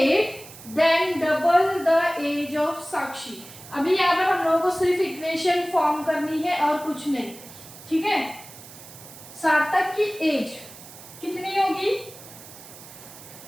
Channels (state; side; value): noise; right; hiss, 17 dB below the sound